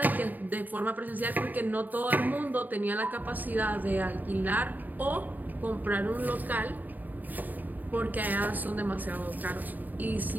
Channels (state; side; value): late; left; 0.085 ms